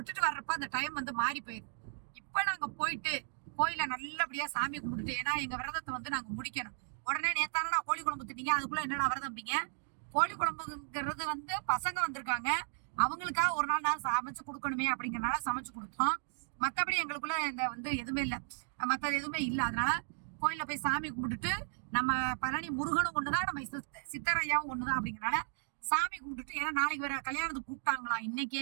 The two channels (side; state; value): left; silent; digital silence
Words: வர்றப்ப அந்த டைம் வந்து மாறி போயிடுது. இப்ப நாங்க போயிட்டு கோயில நல்லபடியா சாமி கும்பிட்டுட்டு, ஏன்னா எங்க விரதத்தை வந்து நாங்க முடிக்கணும். உடனே நேத்தானடா கோழி குழம்பு தின்னீங்க, அதுக்குள்ள என்னடா விரதம்பிங்க? கோழி குழம்புங்கிறது வந்து பசங்க வந்திருக்காங்க, அவங்களுக்காக ஒரு நாள் நான் சமைச்சு கொடுக்கணுமே அப்படிங்கறனால சமைச்சு கொடுத்தோம். மத்தபடி எங்களுக்குள்ள இந்த வந்து எதுவுமே இல்லை, மற்றது எதுவுமே இல்லை. அதனால கோயில போய் சாமி கும்பிட்டுட்டு, நம்ம பழனி முருகனும் ஒண்ணுதான், நம்ம சித்தரையாவும் ஒண்ணுதான் அப்படிங்கறனால சாமி கும்பிட்டுட்டு, ஏன்னா நாளைக்கு வேற கல்யாணத்துக்கு கூப்பிட்டாங்களா. இன்னைக்கு